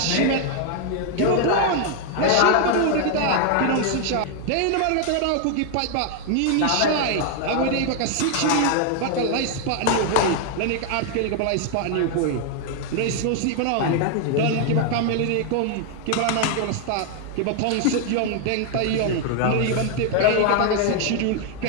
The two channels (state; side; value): different; both; correlation 0.00